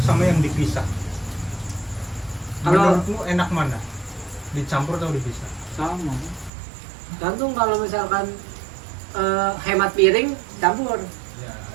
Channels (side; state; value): left; drops out; at 6.5 s